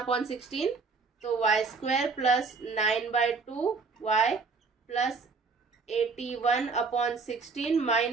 तो y square plus 9/2 y plus 81/16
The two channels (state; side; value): quieter; left; 4.5 dB